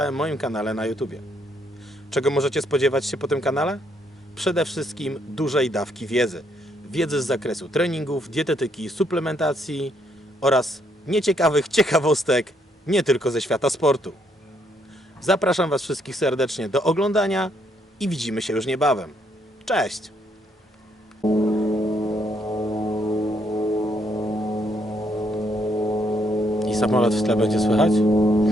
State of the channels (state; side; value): normal; both; correlation 0.72